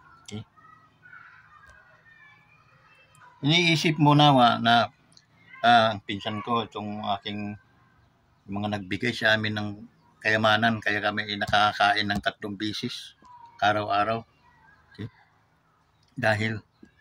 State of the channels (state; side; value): identical; both; correlation 1.00